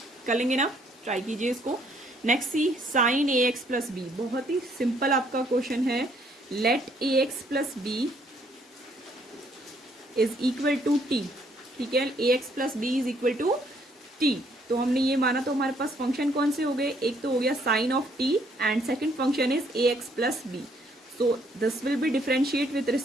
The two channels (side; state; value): both; normal; correlation 0.67